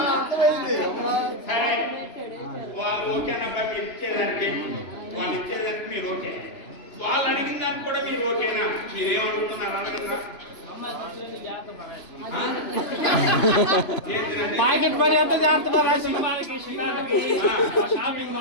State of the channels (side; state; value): right; late; 2.9 ms